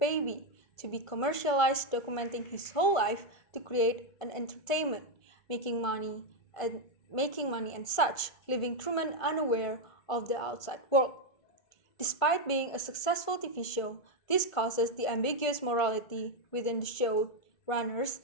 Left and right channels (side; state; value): right; late; 1.5 ms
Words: to be commercialized, documenting his whole life to create an entertainment, making money and such, leaving Truman unaware of the outside world. Despite being a successful TV show, this causes the ambiguous morality within the showrunners